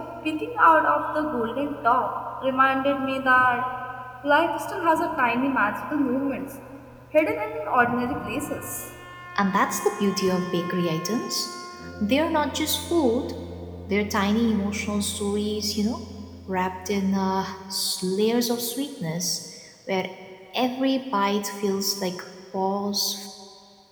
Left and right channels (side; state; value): both; identical; correlation 1.00